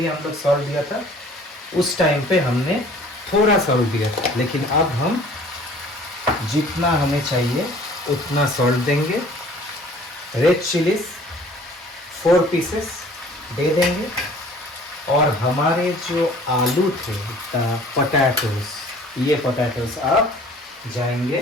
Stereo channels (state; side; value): normal; both; correlation 0.51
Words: हम लोग सॉल्ट दिया था, उस टाइम पे हमने थोड़ा सॉल्ट दिया था, लेकिन अब हम जितना हमें चाहिए उतना सॉल्ट देंगे। रेड चिलीज 4 पीसेस दे देंगे। और हमारे जो आलू थे पोटैटोज, ये पोटैटोज अब जाएंगे